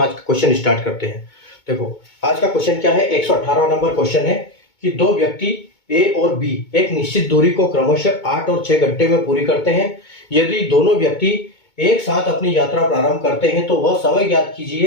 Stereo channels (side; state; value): right; late; 2.2 ms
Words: का क्वेश्चन स्टार्ट करते हैं। देखो आज का क्वेश्चन क्या है, 118 नंबर क्वेश्चन है कि दो व्यक्ति A और B एक निश्चित दूरी को क्रमशः 8 और 6 घंटे में पूरी करते हैं। यदि दोनों व्यक्ति एक साथ अपनी यात्रा प्रारंभ करते हैं तो वह समय ज्ञात